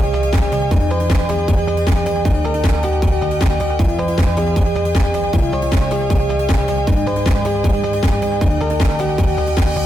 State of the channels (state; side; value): normal; both; correlation 0.87